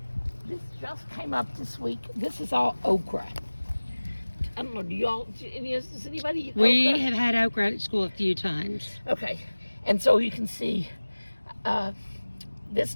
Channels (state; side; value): inverted; both; correlation -1.00